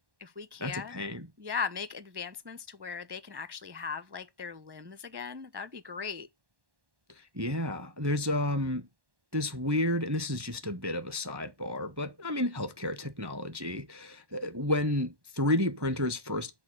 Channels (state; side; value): late; left; 1.1 ms